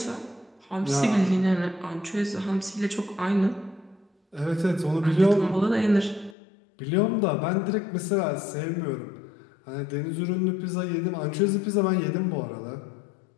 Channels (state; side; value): drops out; right; at 6.4 s